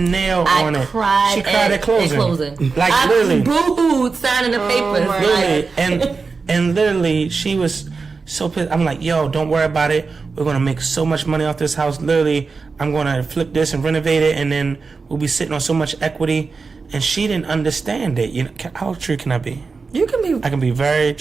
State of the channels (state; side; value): quieter; left; 4.5 dB